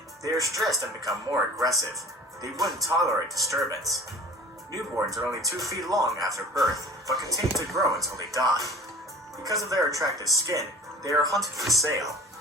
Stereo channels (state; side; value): normal; both; correlation 0.43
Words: they are stressed and become more aggressive. They wouldn't tolerate disturbance. Newborns are only 2 feet long after birth, but continue to grow until they die. Because of their attractive skin, they are hunted for sale.